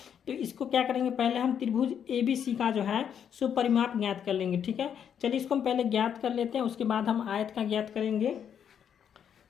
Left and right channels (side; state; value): right; quieter; 8.4 dB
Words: तो इसको क्या करेंगे, पहले हम त्रिभुज ABC का जो है सो परिमाप ज्ञात कर लेंगे, ठीक है। चलिए इसको हम पहले ज्ञात कर लेते हैं, उसके बाद हम आयत का ज्ञात करेंगे।